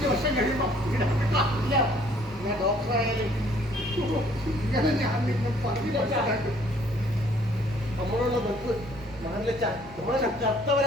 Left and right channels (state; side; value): normal; both; correlation 0.60